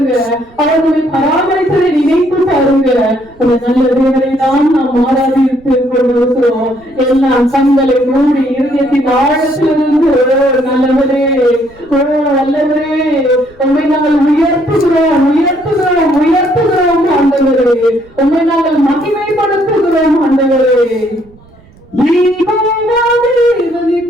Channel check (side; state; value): right; noise; rumble, 26 dB below the sound